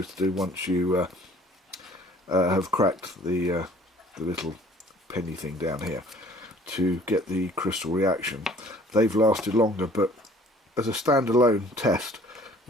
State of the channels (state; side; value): normal; both; correlation 0.54